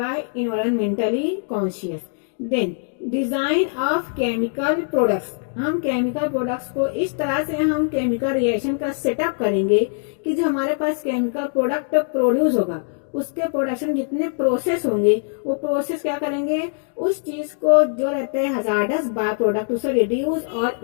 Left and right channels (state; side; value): silent; right; digital silence